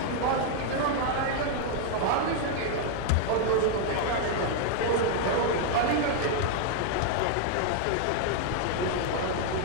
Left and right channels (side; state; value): both; different; correlation 0.00